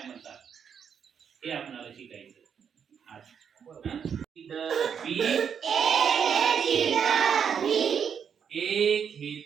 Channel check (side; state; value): left; quieter; 7.4 dB